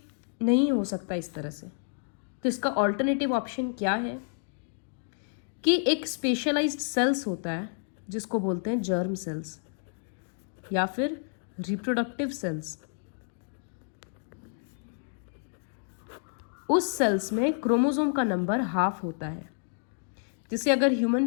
नहीं हो सकता इस तरह से। तो इसका ऑल्टरनेटिव ऑप्शन क्या है कि एक स्पेशलाइज्ड सेल्स होता है जिसको बोलते हैं जर्म सेल्स या फिर रिप्रोडक्टिव सेल्स। उस सेल्स में क्रोमोसोम का नंबर हाफ होता है। जैसे अगर ह्यूमन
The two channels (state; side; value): silent; right; digital silence